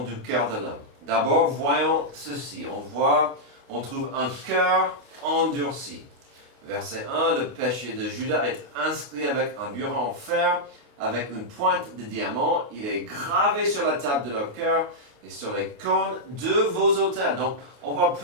du cœur de l'homme. D'abord, voyons ceci. On trouve un cœur endurci. Verset 1, le péché de Judas est inscrit avec un burin en fer, avec une pointe de diamant. Il est gravé sur la table de leur cœur et sur les cornes de vos autels. Donc, on voit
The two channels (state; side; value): late; left; 28 ms